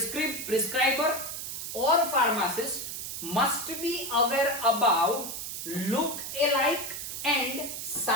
or pharmacist must be aware about look alike and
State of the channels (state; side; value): noise; right; hiss, 6 dB below the sound